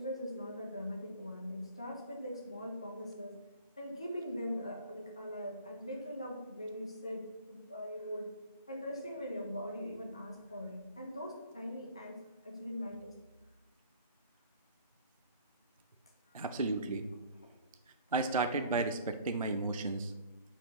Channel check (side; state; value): both; inverted; correlation -0.50